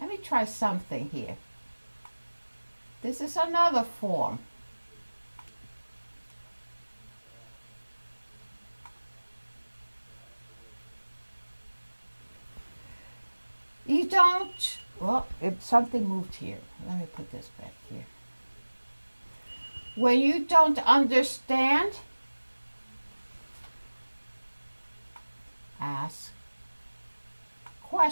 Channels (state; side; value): inverted; both; correlation -1.00